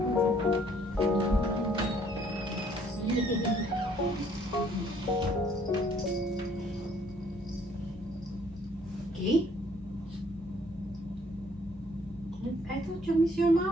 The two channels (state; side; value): normal; both; correlation 0.62